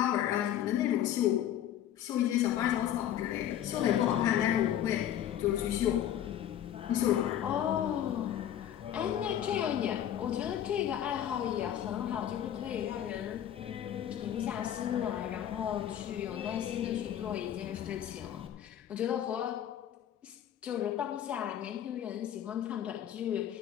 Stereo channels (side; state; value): right; quieter; 10.8 dB